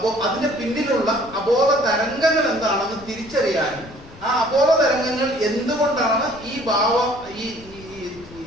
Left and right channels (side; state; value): left; noise; rumble, 20 dB below the sound